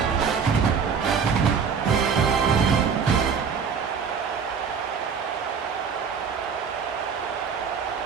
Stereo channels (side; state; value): left; quieter; 6.3 dB